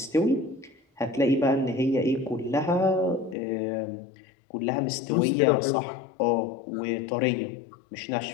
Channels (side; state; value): right; drops out; at 3.4 s